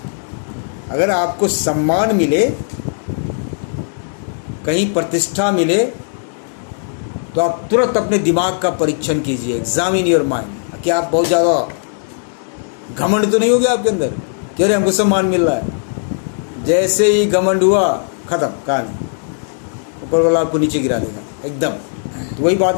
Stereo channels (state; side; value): silent; right; digital silence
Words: अगर आपको सम्मान मिले, कहीं प्रतिष्ठा मिले, तो आप तुरंत अपने दिमाग का परीक्षण कीजिए, एग्जामिन योर माइंड। कि आप बहुत ज़्यादा घमंड तो नहीं हो गया आपके अंदर कि अरे हमको सम्मान मिल रहा है। जैसे ही घमंड हुआ, खत्म कहानी, ऊपर वाला आपको नीचे गिरा देगा एकदम। तो वही